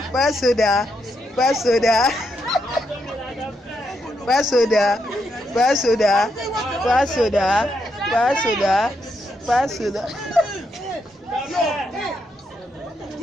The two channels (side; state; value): both; normal; correlation 0.80